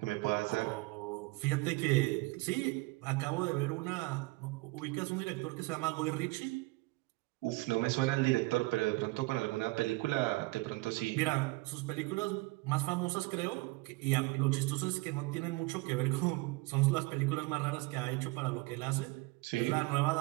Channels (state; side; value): quieter; left; 24.0 dB